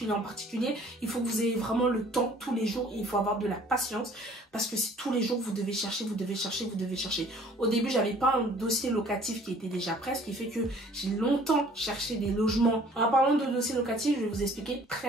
en particulier, il faut que vous ayez vraiment le temps tous les jours et il faut avoir de la patience parce que c'est tous les jours vous devez chercher, vous devez chercher, vous devez chercher. Au début, j'avais pas un dossier locatif qui était déjà prêt, ce qui fait que j'ai longtemps cherché des logements. En parlant de dossier locatif, je vais vous expliquer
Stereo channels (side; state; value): both; normal; correlation 0.54